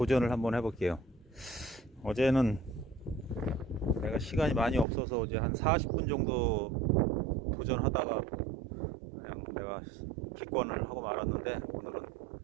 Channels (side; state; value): left; drops out; at 4.9 s